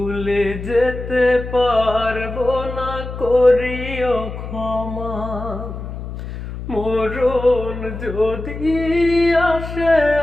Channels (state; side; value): noise; left; hum, 8 dB below the sound